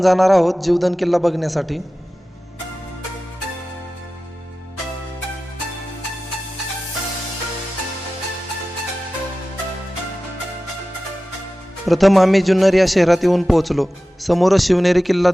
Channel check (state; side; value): normal; both; correlation 0.95